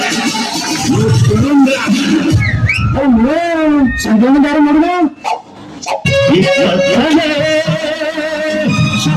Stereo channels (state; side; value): identical; both; correlation 1.00